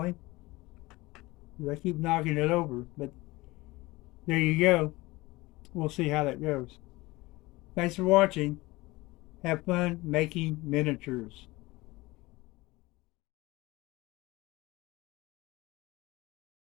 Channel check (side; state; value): right; quieter; 21.0 dB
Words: I keep knocking it over, but there you go. We'll see how that goes. Thanks for watching. Have fun making miniatures.